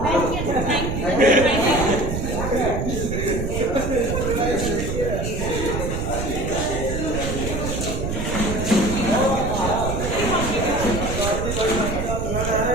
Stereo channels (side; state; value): right; noise; rumble, 3 dB below the sound